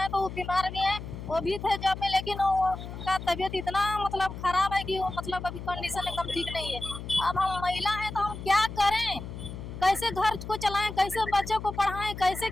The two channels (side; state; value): left; noise; hum, 10 dB below the sound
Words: तो बीमार भी है, वो भी थे जॉब में, लेकिन उनका तबीयत इतना मतलब खराब है कि वो मतलब अभी कंडीशन एकदम ठीक नहीं है। अब हम महिला हैं तो हम क्या करें, कैसे घर को चलाएं, कैसे बच्चों को पढ़ाएं, कैसे